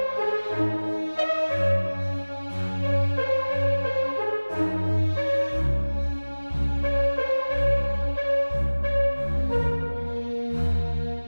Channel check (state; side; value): inverted; both; correlation -1.00